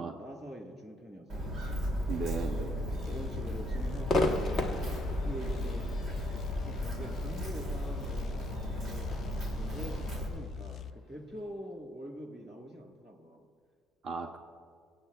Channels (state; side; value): normal; both; correlation 0.71